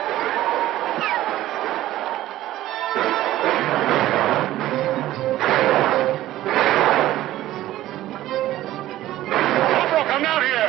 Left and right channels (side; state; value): left; quieter; 14.8 dB